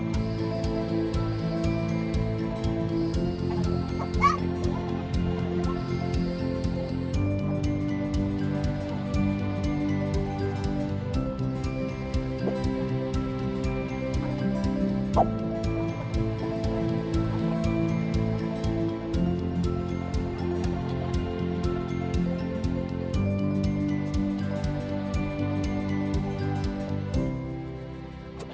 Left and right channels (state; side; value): identical; both; correlation 1.00